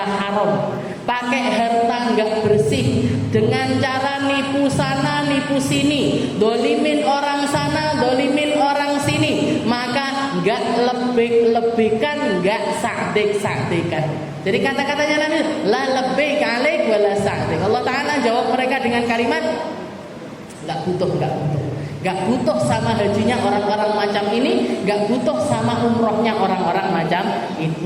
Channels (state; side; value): identical; both; correlation 1.00